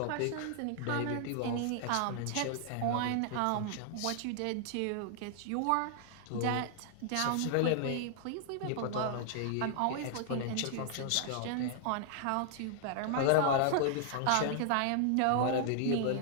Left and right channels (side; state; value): both; different; correlation -0.01